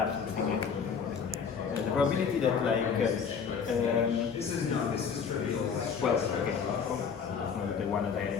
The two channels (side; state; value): right; quieter; 6.4 dB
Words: thing. The probability that like, well, okay, the one that I